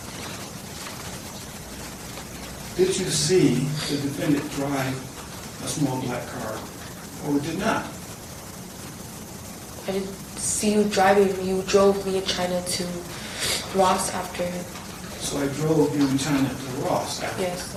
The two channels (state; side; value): identical; both; correlation 1.00